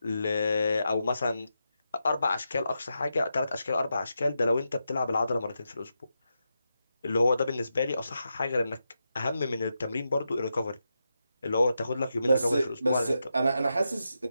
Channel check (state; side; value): inverted; both; correlation -0.87